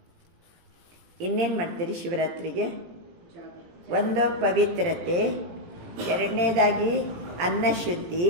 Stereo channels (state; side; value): late; left; 18 ms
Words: ಇನ್ನೇನು ಮಾಡ್ತೀರಿ ಶಿವರಾತ್ರಿಗೆ? ಒಂದು ಪವಿತ್ರತೆ, ಎರಡನೇದಾಗಿ ಅನ್ನ ಶುದ್ಧಿ,